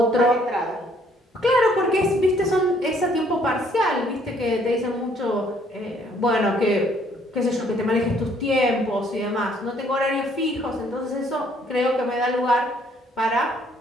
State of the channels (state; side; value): normal; both; correlation 0.64